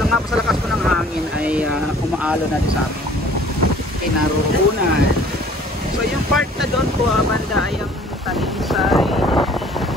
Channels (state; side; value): normal; both; correlation 0.53